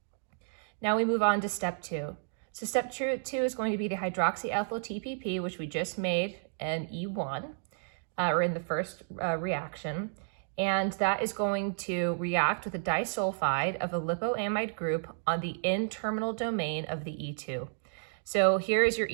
Now we move on to step 2. So step 2 is going to be the hydroxyethyl TPP, which we just made in E1, or in the first reaction. And that is going to react with a disulfide of a lipoamide group on the N-terminal domain of the E2. So here is your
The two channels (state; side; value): silent; left; digital silence